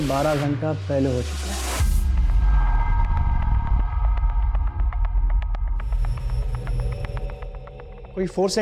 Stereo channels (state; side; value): identical; both; correlation 1.00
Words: 12 घंटा पहले हो चुका है। कोई फोर्स